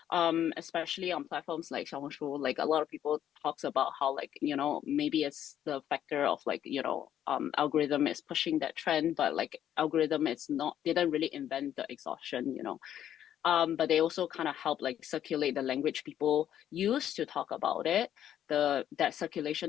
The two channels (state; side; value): quieter; right; 10.7 dB